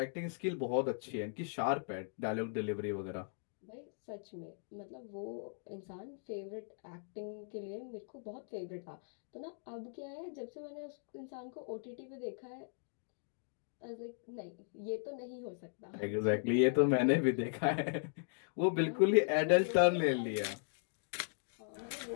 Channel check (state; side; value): silent; right; digital silence